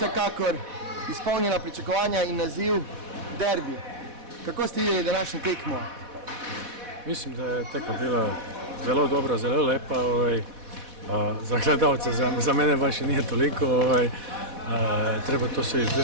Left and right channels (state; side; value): late; left; 4.1 ms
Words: izpolnila pričakovanja in naziv derbi. Kako ste videli današnjo tekmo? Mislim da je tekma bila zelo dobra, zelo lepa. Za gledalce, za mene baš i nije toliko. Treba to se